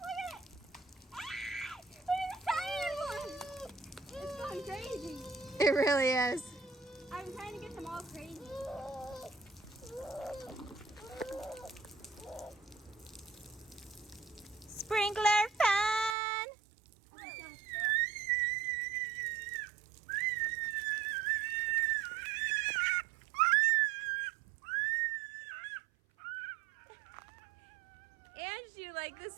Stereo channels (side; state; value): left; drops out; at 16.2 s